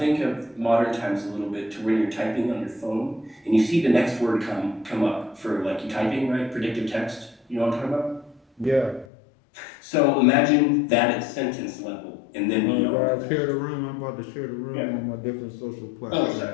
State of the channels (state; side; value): drops out; right; at 9.1 s